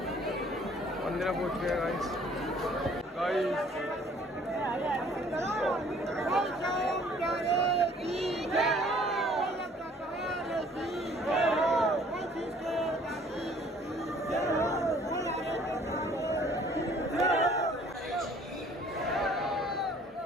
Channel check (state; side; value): normal; both; correlation 0.56